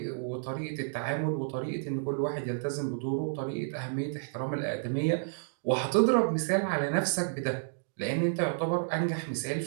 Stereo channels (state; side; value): silent; left; digital silence